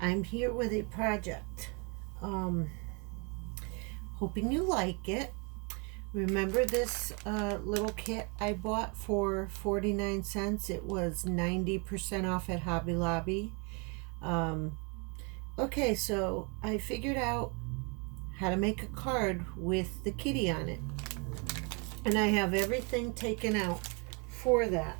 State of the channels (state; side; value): quieter; left; 33.6 dB